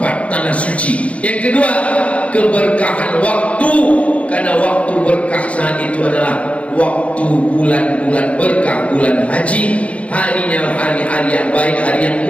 tanah suci. Yang kedua, keberkahan waktu. Karena waktu berkah saat itu adalah waktu bulan-bulan berkah, bulan haji. Harinya hari-hari yang baik, hari yang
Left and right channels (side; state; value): right; late; 0.063 ms